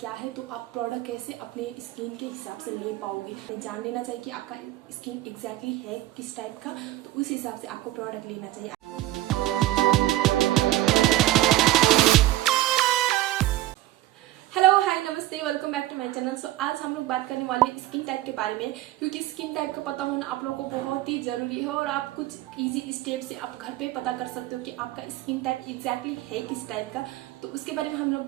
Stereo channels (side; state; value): left; quieter; 15.7 dB